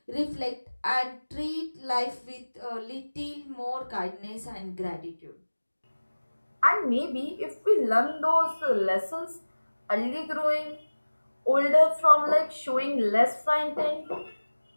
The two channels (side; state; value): both; inverted; correlation -1.00